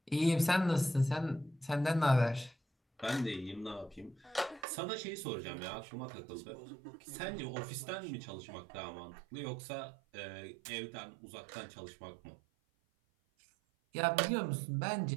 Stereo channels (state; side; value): drops out; left; at 4.7 s